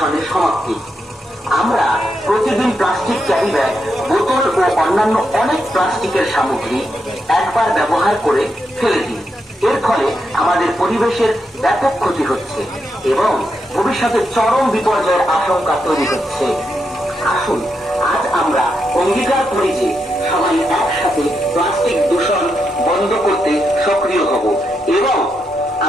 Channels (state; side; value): normal; both; correlation 0.83